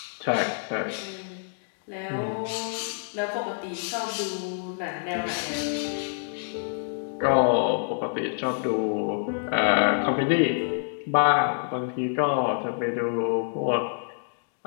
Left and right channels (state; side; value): silent; right; digital silence